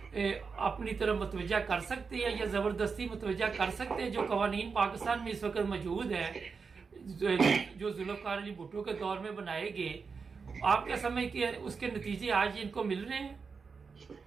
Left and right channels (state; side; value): quieter; left; 5.2 dB